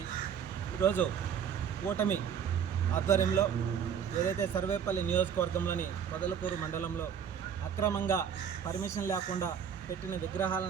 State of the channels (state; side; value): quieter; left; 8.0 dB